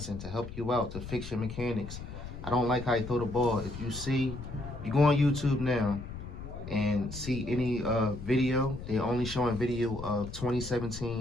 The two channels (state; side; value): noise; left; rumble, 11 dB below the sound